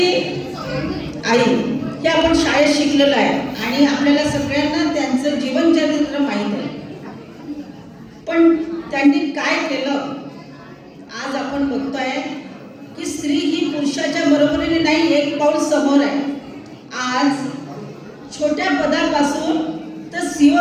आई हे आपण शाळेत शिकलेलं आहे आणि आपल्याला सगळ्यांना त्यांचं जीवनचरित्र माहीत आहे. पण त्यांनी काय केलं आज आपण बघतोय की स्त्री ही पुरुषाच्या बरोबरीने नाही, एक पाऊल समोर आहे. आज छोट्या पदापासून तर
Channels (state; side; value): identical; both; correlation 1.00